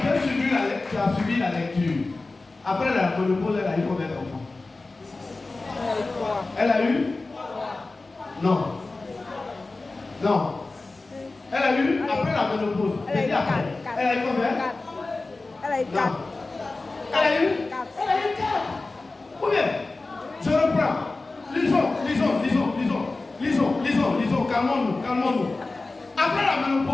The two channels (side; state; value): right; quieter; 3.4 dB